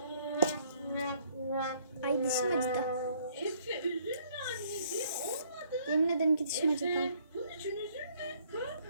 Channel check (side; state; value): both; inverted; correlation -0.64